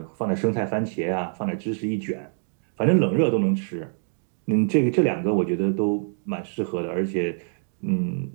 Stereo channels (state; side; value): silent; left; digital silence